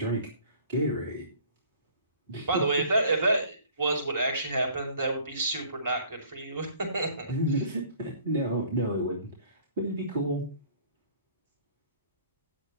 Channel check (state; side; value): inverted; both; correlation -0.54